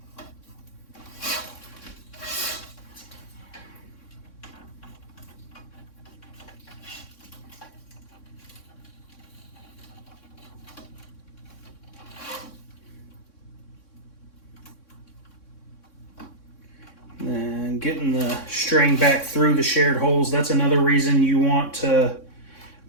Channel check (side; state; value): right; late; 3.6 ms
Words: And getting the string back through the shared holes, that's another reason you want to